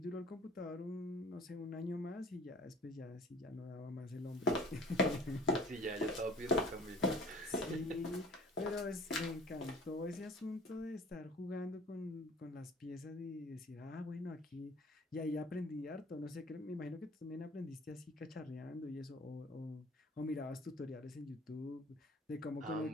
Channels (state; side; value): normal; both; correlation 0.49